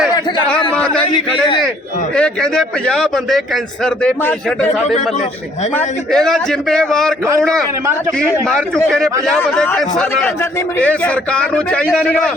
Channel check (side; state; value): both; normal; correlation 0.62